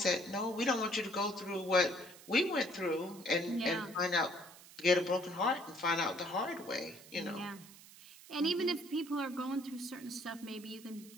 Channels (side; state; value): right; noise; hiss, 19 dB below the sound